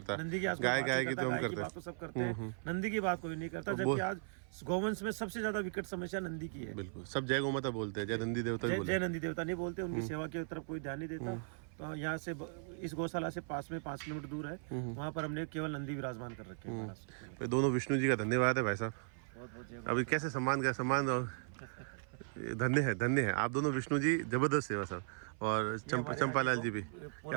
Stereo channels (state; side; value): silent; left; 53 dB below the other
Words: नंदी की आज कोई गाय बात गाय नहीं की करता, तो हम गाय की करते बात तो सब करते हैं, नंदी की बात कोई नहीं करता, जबकि आज गौवंश में सबसे ज्यादा विकट समस्या नंदी की है। बिल्कुल, सब जय गौ माता बोलते हैं, जय नंदी देवता भी बोलते जय नंदी देवता नहीं बोलते, उनकी सेवा की तरफ कोई ध्यान नहीं देता। तो यहाँ से इस गौशाला से पास में 5 किलोमीटर दूर है, वहाँ पर हमने केवल नंदी विराजमान कर रखे हैं। हैं। दोनों विष्णु जी का धन्यवाद है भाई साहब। अभी कैसे सम्मान का सम्मान और धन्य है आप दोनों विष्णु जी, जबरदस्त सेवा साहब। और चंपालाल जी भी,